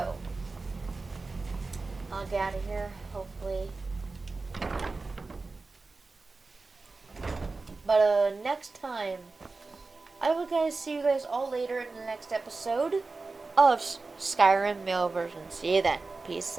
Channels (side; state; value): left; quieter; 3.8 dB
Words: I'll get out of here, hopefully. But next time, I will see you guys all later in the next episode of Skyrim male version. See you then. Peace